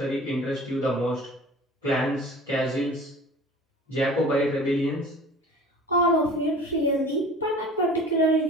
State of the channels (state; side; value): normal; both; correlation 0.42